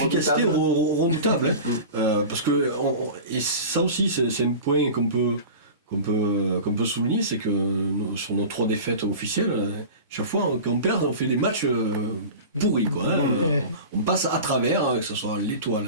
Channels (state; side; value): inverted; both; correlation -0.34